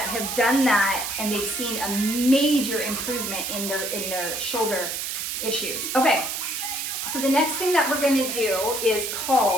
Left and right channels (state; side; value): noise; right; hiss, 3 dB below the sound